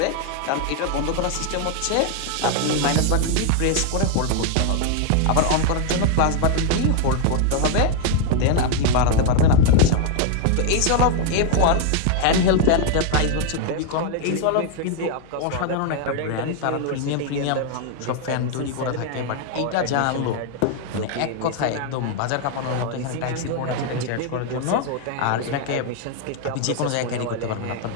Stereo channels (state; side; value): different; both; correlation 0.00